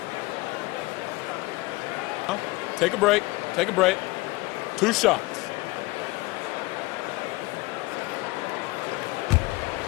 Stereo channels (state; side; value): quieter; right; 22.1 dB